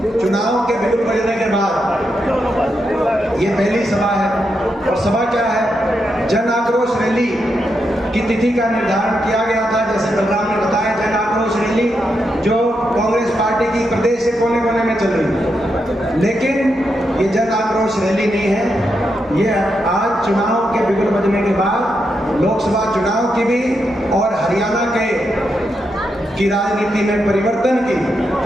चुनाव के बिगुल बजने के बाद ये पहली सभा है। और सभा क्या है? जन आक्रोश रैली की तिथि का निर्धारण किया गया था, जैसे बलराम ने बताया। जन आक्रोश रैली जो कांग्रेस पार्टी की प्रदेश के कोने कोने में चल रही है, लेकिन ये जन आक्रोश रैली नहीं है। ये आज चुनाव के बिगुल बजने के बाद लोकसभा चुनाव की भी और हरियाणा की राजनीति में परिवर्तन की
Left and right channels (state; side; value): normal; both; correlation 0.83